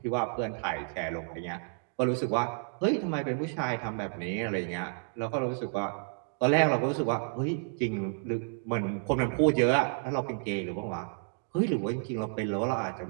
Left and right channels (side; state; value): left; silent; 57 dB below the other